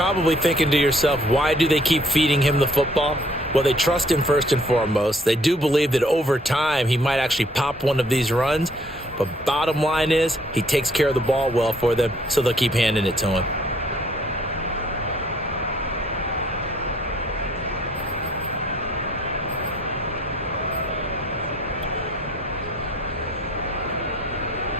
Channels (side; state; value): both; normal; correlation 0.61